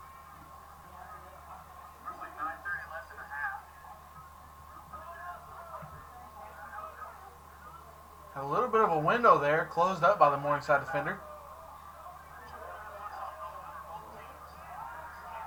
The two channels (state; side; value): identical; both; correlation 1.00